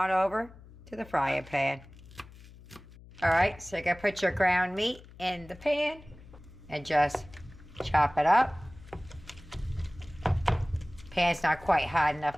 over to the frying pan. Alright, so you're gonna put your ground meat in the pan and just chop it up. Pan's not quite hot enough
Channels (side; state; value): left; noise; hum, 20 dB below the sound